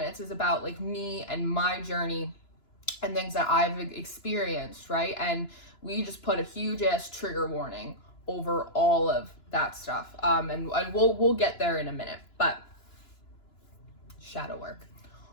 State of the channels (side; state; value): right; late; 2.9 ms